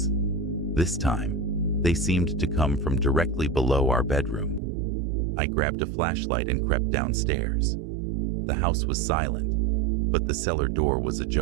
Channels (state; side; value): drops out; left; at 4.6 s